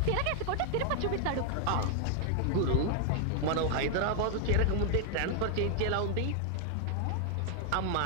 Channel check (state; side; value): different; both; correlation 0.00